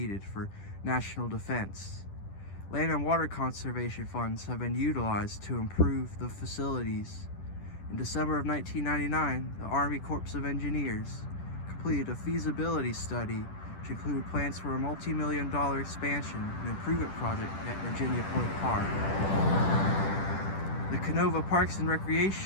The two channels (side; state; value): right; late; 10 ms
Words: for national defense. Land and water conservation funds have been utilized to improve the facilities. In December of 1999, the Army Corps of Engineers completed a feasibility study which included plans for a multi-million-dollar expansion and improvement project at Virginia Point Park. The Canova Parks and